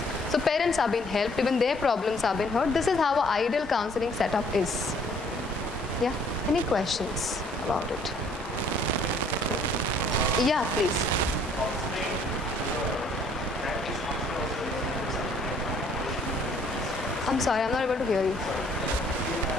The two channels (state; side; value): normal; both; correlation 0.60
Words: So parents are being helped, even their problems are being heard. This is how an ideal counseling setup is. Yeah, any questions about it? Yeah, please. I'm sorry, I'm not able to hear you.